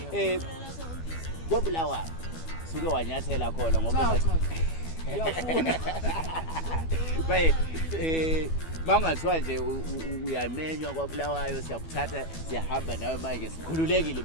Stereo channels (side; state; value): right; late; 12 ms